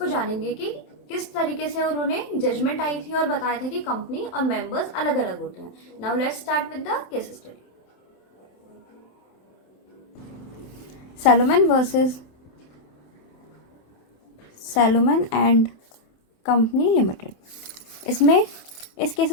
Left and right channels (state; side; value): late; right; 27 ms